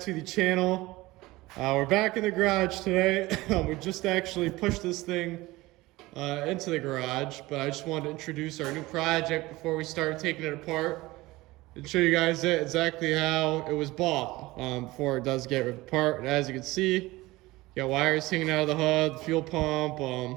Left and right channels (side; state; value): left; quieter; 19.8 dB